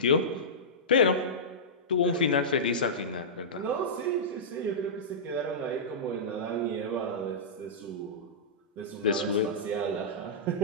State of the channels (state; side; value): normal; both; correlation -0.15